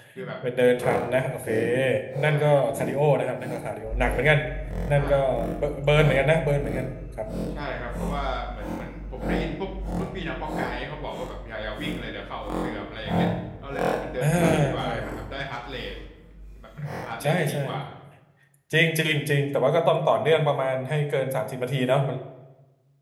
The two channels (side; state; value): both; identical; correlation 1.00